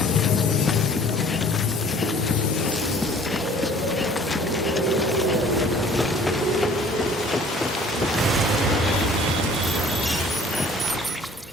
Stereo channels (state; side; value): normal; both; correlation 0.51